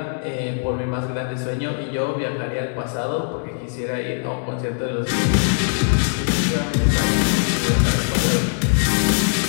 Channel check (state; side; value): silent; right; 65 dB below the other